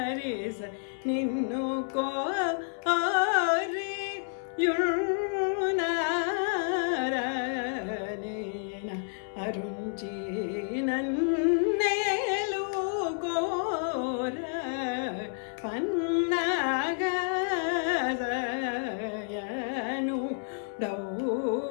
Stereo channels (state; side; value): silent; right; 58 dB below the other